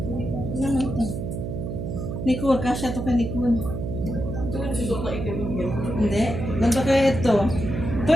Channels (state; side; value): noise; right; hum, 4 dB below the sound